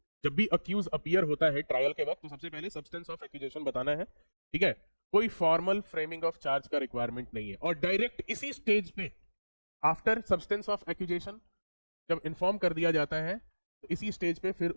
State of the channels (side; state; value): both; inverted; correlation -1.00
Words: जब भी अक्यूज अपीयर होता है ट्रायल के वक्त तो सबसे पहले सब्सटेंस ऑफ एक्यूजेशन बताना है, ठीक है। कोई फॉर्मल फ्रेमिंग ऑफ चार्ज का रिक्वायरमेंट नहीं है, और डायरेक्ट इसी स्टेज पे आफ्टर सब्सटेंस ऑफ एक्यूजेशन जब इन्फॉर्म कर दिया जाता है तो इसी स्टेज पे फिर